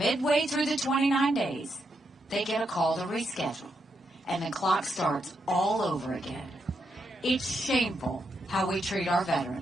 through the 29 days, they get a call to reschedule, and the clock starts all over again. It's shameful how we treat our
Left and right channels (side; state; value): both; normal; correlation 0.81